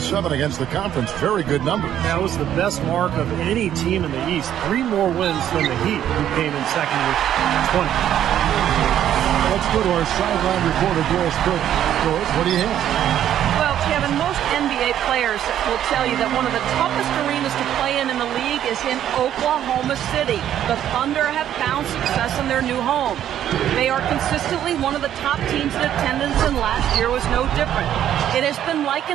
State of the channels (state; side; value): quieter; left; 10.8 dB